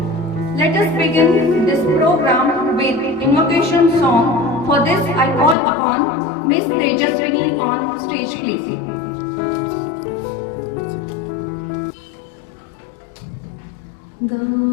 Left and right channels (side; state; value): right; drops out; at 5.6 s